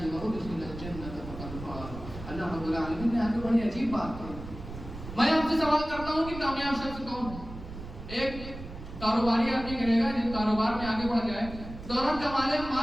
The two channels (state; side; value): noise; right; rumble, 11 dB below the sound